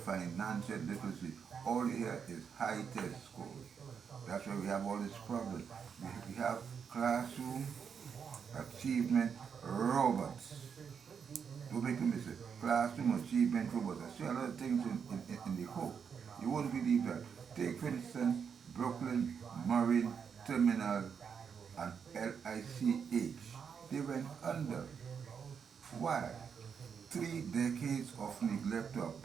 literacy. All here is high test scores. That's why we have all these problems. We have classroom achievement robots. Don't make a mistake. Classroom achievement robots. I see a lot of things in the hope. You won't believe that. Take, for instance, Brooklyn Marine Terminal and LICH. They went under. Why? 3 decades of neglect to a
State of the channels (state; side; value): quieter; left; 6.8 dB